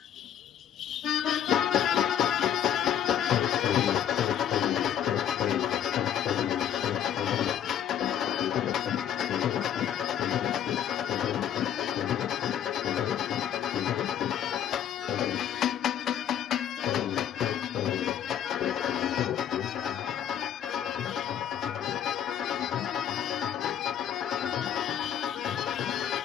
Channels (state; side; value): quieter; right; 9.8 dB